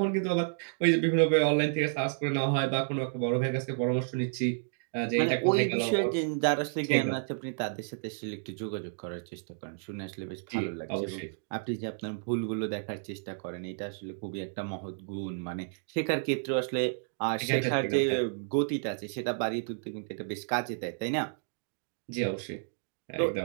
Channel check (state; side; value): silent; left; digital silence